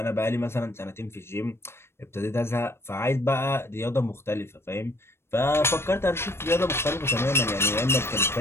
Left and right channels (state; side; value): late; right; 0.12 ms